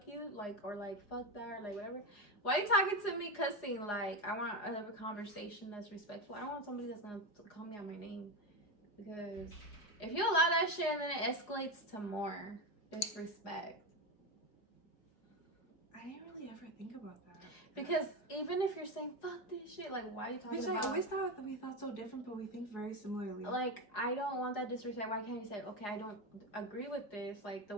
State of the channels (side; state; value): right; late; 4.9 ms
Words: you, like, or like fuck that, or like whatever. Why are you talking to me cussing? Like, I want to have a conversation that's respectful. I don't want somebody that's gonna call me out my name, because if you allow that shit and then it escalates to more disrespect. I didn't really ever think about that. Because even if you're saying fuck this shit, like, why are you talking about? I always thought that we thought so different, but we think very similarly. Like, I don't want that disrespect. Why can't you say, okay, I don't agree with this? Like, the